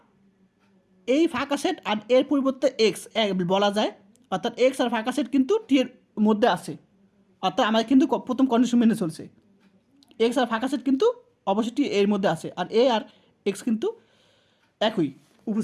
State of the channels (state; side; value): identical; both; correlation 1.00